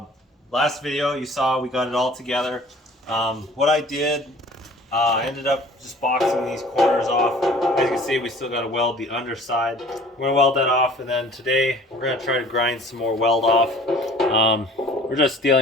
Last video you saw we got it all together. What I did, I ended up just boxing these corners off. As you can see, we still got to weld the underside. We're going to weld that off, and then today we're going to try to grind some more weld off. We're just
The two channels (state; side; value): normal; both; correlation 0.49